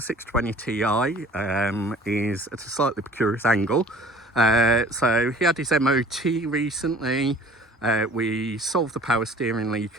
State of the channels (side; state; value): both; normal; correlation 0.48